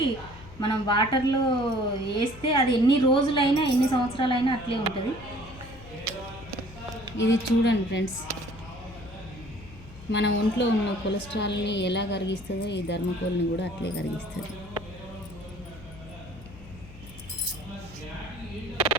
మనం వాటర్లో వేస్తే అది ఎన్ని రోజులైనా ఎన్ని సంవత్సరాలైనా అట్లే ఉంటుంది. ఇది చూడండి ఫ్రెండ్స్, మన ఒంట్లో ఉన్న కొలెస్ట్రాల్ని ఎలా కరిగిస్తుందో ఈ ధర్మకోల్ని కూడా అట్లే కరిగిస్తుంది.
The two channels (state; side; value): noise; left; hum, 17 dB below the sound